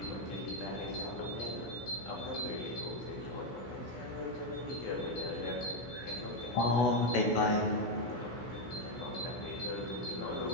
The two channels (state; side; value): late; right; 16 ms